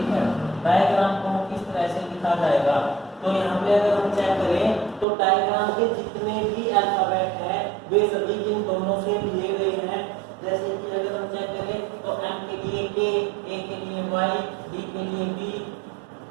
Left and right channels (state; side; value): drops out; left; at 5.1 s